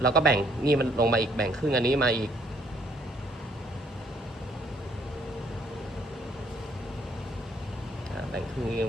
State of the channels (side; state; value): both; normal; correlation 0.66